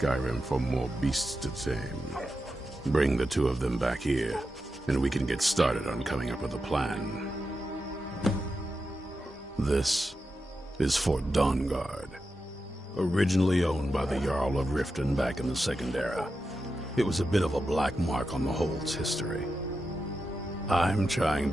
for more beasts to tame. Bring the two of them back here, and we can get started on coming up with a plan. This is Fort Dawnguard, originally owned by the Jarl of Riften back in the Second Era. It was a bit of a black mark on the Hold's history. I'm trying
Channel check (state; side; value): normal; both; correlation 0.89